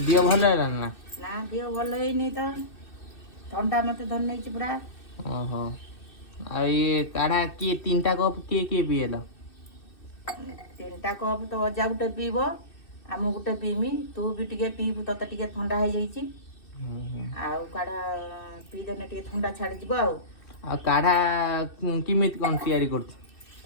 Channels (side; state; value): right; late; 2.6 ms